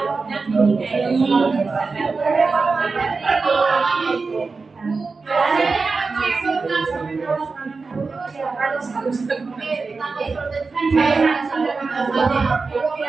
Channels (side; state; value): left; quieter; 4.3 dB